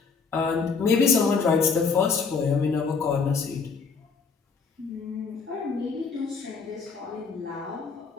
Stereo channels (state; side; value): quieter; right; 5.2 dB